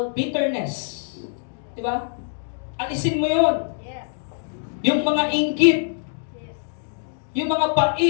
bitterness. Diba? Alisin mo yon. Yes. Yung mga inggit, Yes. yung mga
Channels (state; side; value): silent; right; digital silence